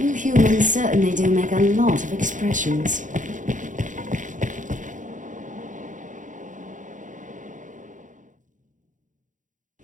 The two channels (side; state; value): left; late; 0.37 ms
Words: humans certainly do make a lot of expressions.